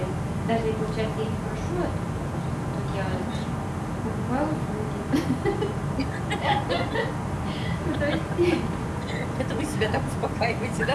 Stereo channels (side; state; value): both; identical; correlation 1.00